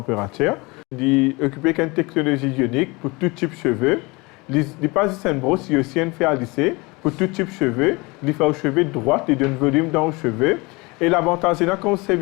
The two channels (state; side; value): quieter; right; 25.3 dB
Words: Il est équipé avec une technologie ionique pour tout type de cheveux. Il n'est pas juste un brosse, il y a aussi un fer à lisser pour tout type de cheveux. Il fait aux cheveux droits, il donne volume dans les cheveux. Et l'avantage, c'est quand on